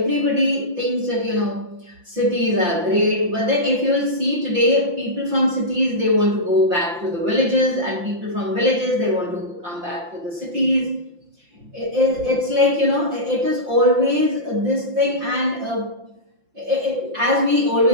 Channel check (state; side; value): late; left; 5.7 ms